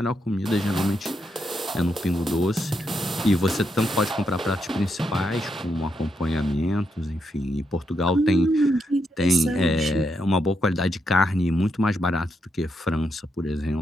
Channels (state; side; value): normal; both; correlation 0.81